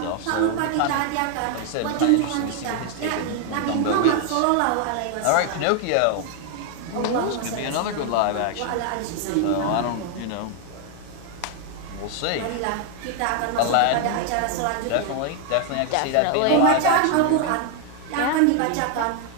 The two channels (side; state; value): both; different; correlation 0.00